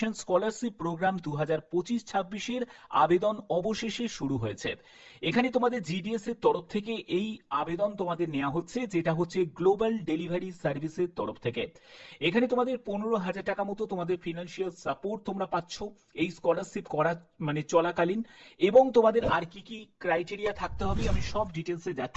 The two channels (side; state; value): both; identical; correlation 1.00